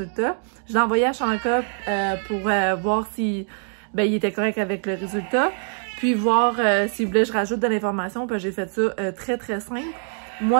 Je l'ai envoyé à Chanka pour voir si il était correct avec le résultat. Puis voir s'il voulait que je rajoute de l'information. Puis j'ai fait ça très, très simple.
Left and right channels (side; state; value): left; silent; 57 dB below the other